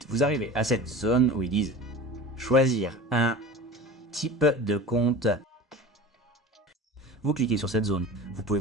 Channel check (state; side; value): normal; both; correlation 0.35